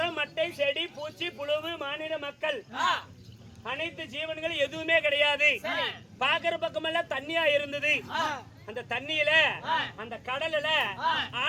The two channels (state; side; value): identical; both; correlation 1.00